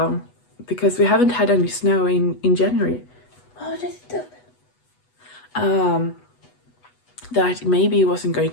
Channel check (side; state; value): right; late; 8.1 ms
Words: because we haven't had any snow in January. Oh, that's dope. That maybe it wasn't going